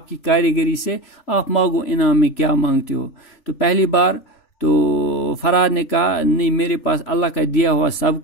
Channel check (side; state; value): right; late; 3.4 ms